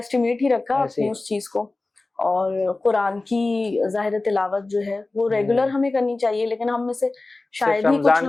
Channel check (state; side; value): quieter; right; 3.2 dB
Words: ही रखा अपनी उस चीज को। और कुरान की ज़ाहिर तिलावत जो है वो रेगुलर हमें करनी चाहिए, लेकिन हम में से शायद ही कुछ रमजान के